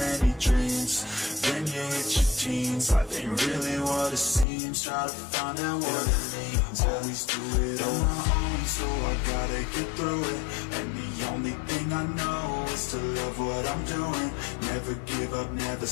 dreams, then you hit your teens. Life ain't really what it seems, try to find out what it means. Always do it on my own, so I gotta get through it. And the only thing I know is to love what I'm doing. Never give up, never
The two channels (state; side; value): drops out; right; at 4.5 s